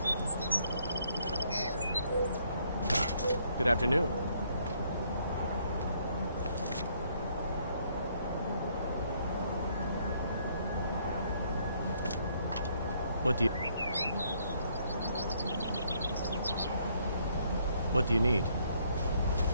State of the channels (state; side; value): inverted; both; correlation -0.68